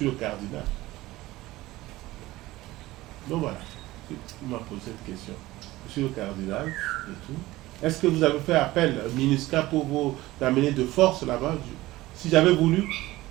le cardinal ». Donc voilà, il m'a posé cette question. Je suis le cardinal et tout. Est-ce que vous avez fait appel à MINUSCA pour vous amener de force là-bas? Si j'avais voulu,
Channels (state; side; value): quieter; left; 17.9 dB